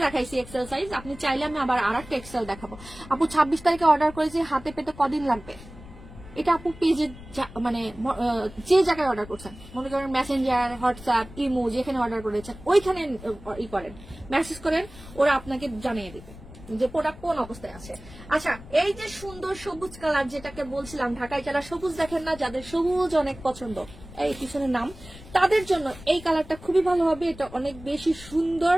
দেখাইছি এক্সেল সাইজ। আপনি চাইলে আমি আবার আরেকটা এক্সেল দেখাবো। আপু 26 তারিখে অর্ডার করেছি, হাতে পেতে কদিন লাগবে? এটা আপু পেজে মানে যে জায়গায় অর্ডার করছেন, মনে করেন মেসেঞ্জার, হোয়াটসঅ্যাপ, ইমো, যেখানে অর্ডার করেছেন ওইখানে ই করেন, মেসেজ করেন, ওরা আপনাকে জানিয়ে দিবে যে প্রোডাক্ট কোন অবস্থায় আছে। আচ্ছা, এই যে সুন্দর সবুজ কালার যেটাকে বলছিলাম, ঢাকায় যারা সবুজ দেখেন না, যাদের সবুজ অনেক পছন্দ, এই পিছনের নাম, তাদের জন্য এই কালারটা খুবই ভালো হবে। এটা অনেক বেশি সুন্দর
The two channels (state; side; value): noise; left; rumble, 17 dB below the sound